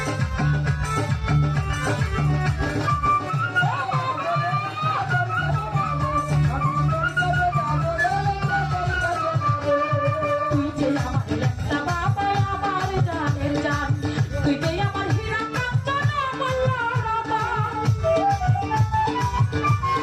তুই যে আমার ল্যাংটা বাবা, আমার জানের জান, তুই যে আমার হীরা কাঞ্চন অমূল্য রতন।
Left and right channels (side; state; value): both; identical; correlation 1.00